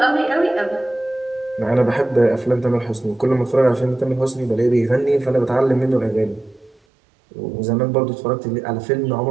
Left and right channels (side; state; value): left; drops out; at 6.8 s